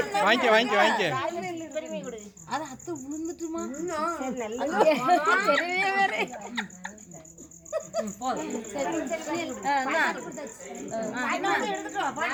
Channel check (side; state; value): both; identical; correlation 1.00